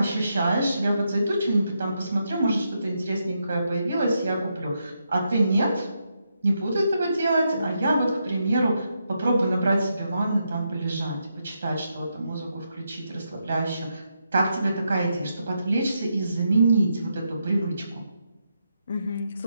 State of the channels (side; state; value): both; inverted; correlation -0.82